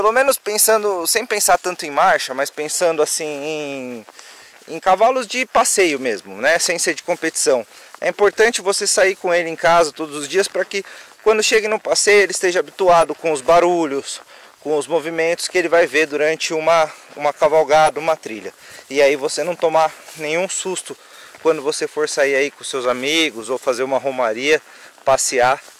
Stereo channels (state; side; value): identical; both; correlation 1.00